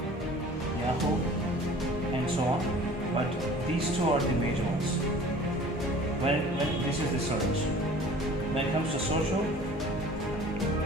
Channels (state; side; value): normal; both; correlation 0.46